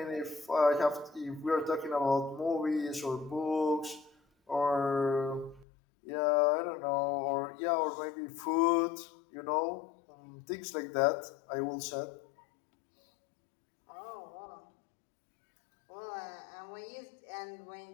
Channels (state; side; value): drops out; right; at 5.7 s